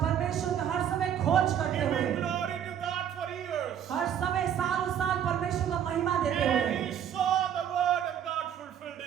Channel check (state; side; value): quieter; left; 9.4 dB